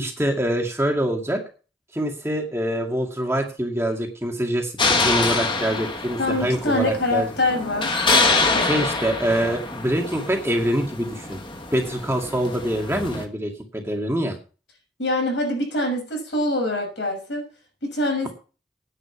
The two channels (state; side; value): normal; both; correlation 0.43